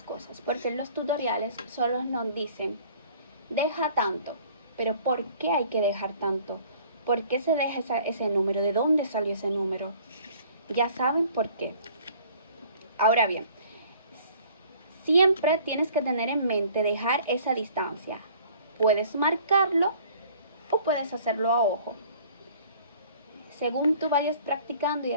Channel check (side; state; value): both; inverted; correlation -0.54